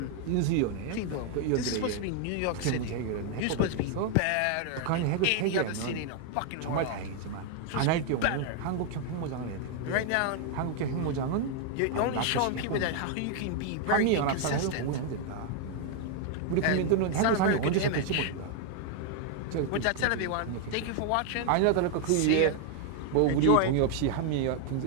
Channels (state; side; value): different; both; correlation 0.00